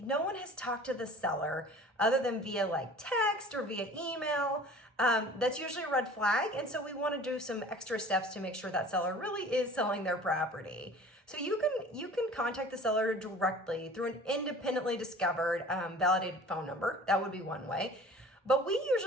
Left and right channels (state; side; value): normal; both; correlation 0.45